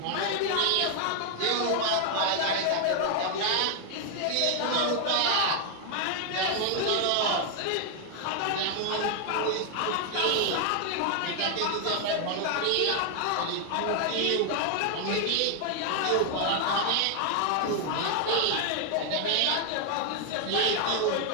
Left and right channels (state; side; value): different; both; correlation 0.00